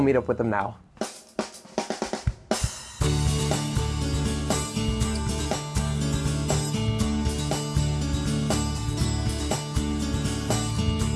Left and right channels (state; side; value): identical; both; correlation 1.00